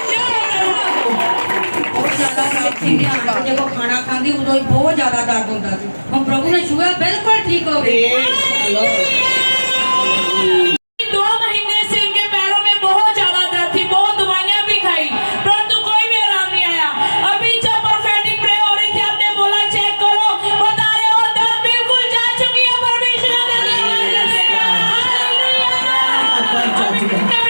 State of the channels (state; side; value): inverted; both; correlation -1.00